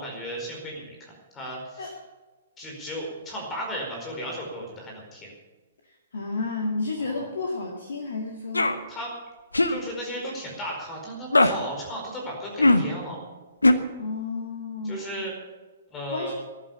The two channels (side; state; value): both; inverted; correlation -0.77